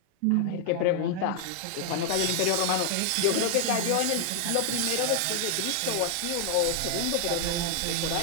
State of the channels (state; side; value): different; both; correlation 0.00